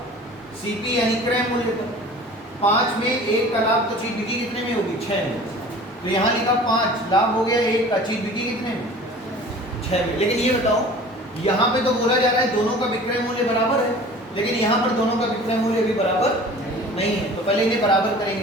सीपी यानी क्रय मूल्य पर। 5 में 1 का लाभ, तो चीज बिकी कितने में होगी? 6 में। तो यहाँ लिखा 5, लाभ हो गया 1 का, चीज बिकी कितने में? 6 में। लेकिन ये बताओ यहाँ पे तो बोला जा रहा है दोनों का विक्रय मूल्य बराबर है, लेकिन यहाँ पर दोनों का विक्रय मूल्य भी बराबर नहीं है। तो पहले इन्हें बराबर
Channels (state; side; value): normal; both; correlation 0.43